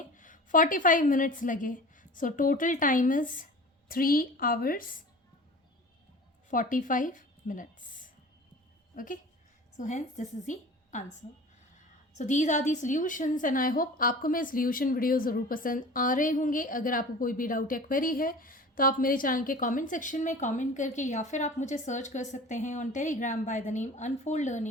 45 मिनट्स लगे. So total time is 3 hours 45 minutes. Okay, so hence this is the answer. So these are the solutions and I hope आपको मेरे सोल्यूशन वीडियो ज़रूर पसंद आ रहे होंगे. अगर आपको कोई भी डाउट या क्वेरी है तो आप मेरे चैनल के कमेंट सेक्शन में कमेंट करके, या फिर आप मुझे सर्च कर सकते हैं on Telegram by the name unfold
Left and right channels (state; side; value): normal; both; correlation 0.40